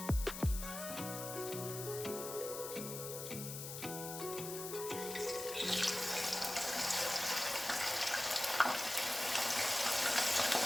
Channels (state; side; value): noise; left; hiss, 7 dB below the sound